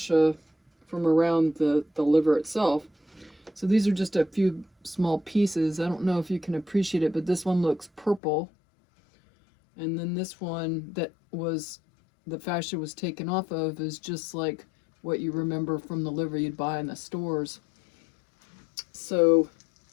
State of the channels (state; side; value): drops out; right; at 8.2 s